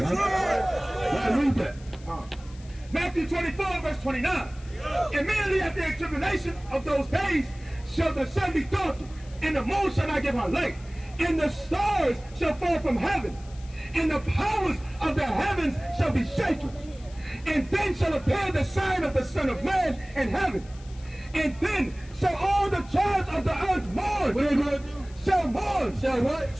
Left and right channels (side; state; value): left; noise; hiss, 24 dB below the sound